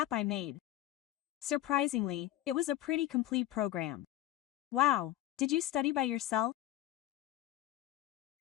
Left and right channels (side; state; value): right; quieter; 13.9 dB